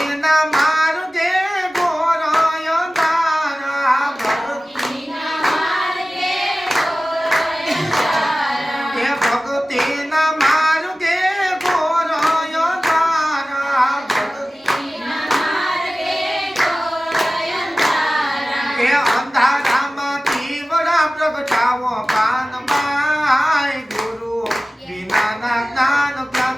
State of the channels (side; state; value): both; normal; correlation 0.96